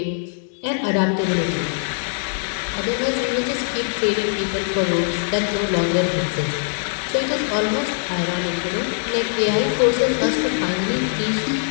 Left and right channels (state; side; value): silent; right; 64 dB below the other